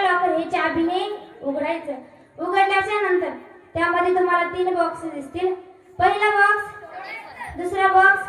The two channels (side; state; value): both; identical; correlation 1.00